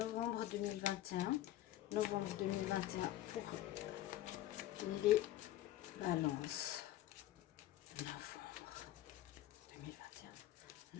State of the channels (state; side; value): quieter; right; 14.1 dB